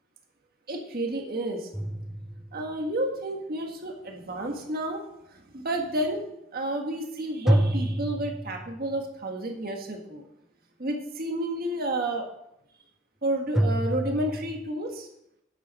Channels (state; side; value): normal; both; correlation 0.47